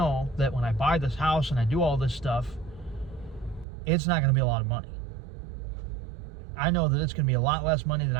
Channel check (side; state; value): left; drops out; at 3.7 s